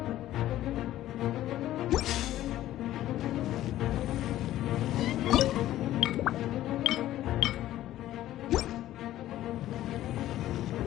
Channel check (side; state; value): right; quieter; 13.8 dB